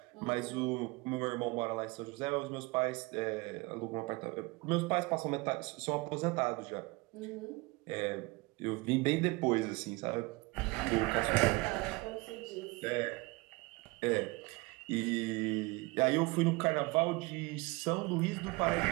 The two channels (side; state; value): left; quieter; 24.8 dB